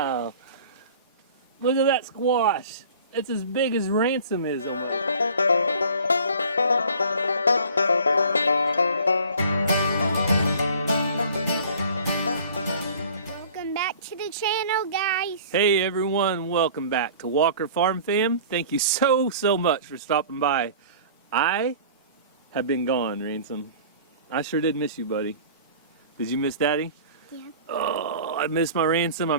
Look at that squash. It's as big as Ransom is almost. Welcome back to the channel, guys. Hey everyone, welcome back to Walker Farm Fam. Thank you so much for stopping by. I have been gone, Ransom. I sure did miss you, buddy. Did you miss Daddy? Yeah. Oh, I miss my Ransom. I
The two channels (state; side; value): inverted; both; correlation -0.46